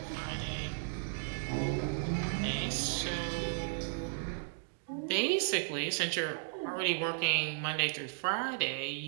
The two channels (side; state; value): left; silent; digital silence